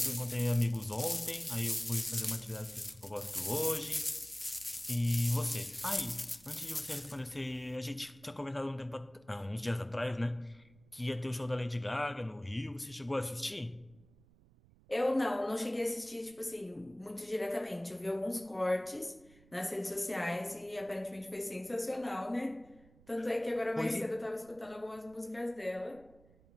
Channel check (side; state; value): right; noise; rumble, 26 dB below the sound